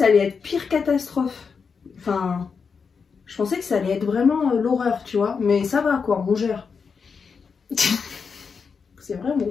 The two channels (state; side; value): quieter; right; 5.6 dB